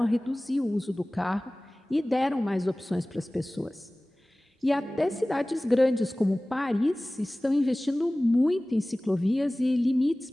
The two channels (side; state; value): both; normal; correlation 0.98